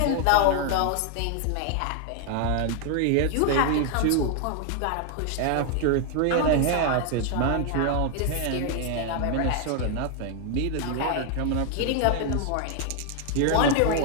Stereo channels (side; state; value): both; different; correlation 0.00